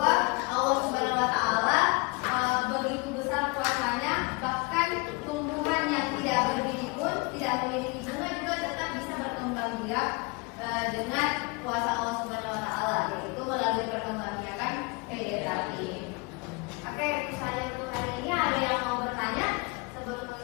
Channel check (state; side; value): quieter; right; 28.5 dB